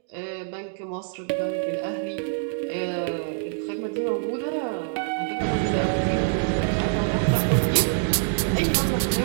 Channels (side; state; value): left; silent; digital silence